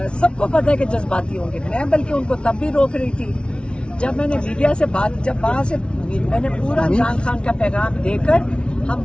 سب کو پتہ ہے کہ جذباتی ہوں گے. میں بلکہ ان کو تب بھی روک رہی تھی جب میں نے میڈیا سے جب وہاں سے میں نے پورا عمران خان کا پیغام دے کر ہم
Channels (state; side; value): late; right; 0.058 ms